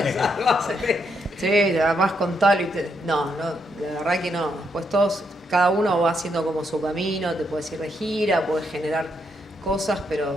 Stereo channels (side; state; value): both; normal; correlation 0.78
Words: sí, vas con tal y no, la verdad que no. Pues cada uno va haciendo como su camino, te puedes ir de gira, puedes generar cosas,